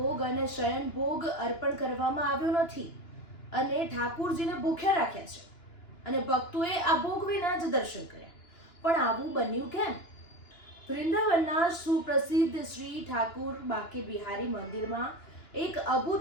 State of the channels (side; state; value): right; late; 2.9 ms